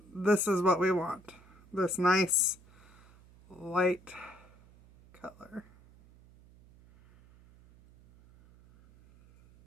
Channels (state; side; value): noise; right; hum, 25 dB below the sound